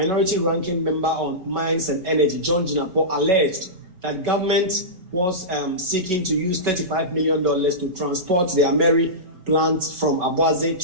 ranking member on mines and energy, John Jinapo, alleged that government was seeking to use $35 million to transport the Ameri plant from Abuaze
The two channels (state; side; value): late; left; 5.4 ms